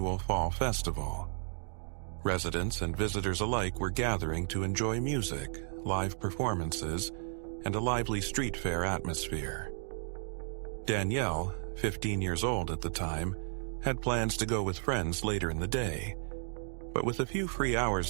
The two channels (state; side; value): silent; left; digital silence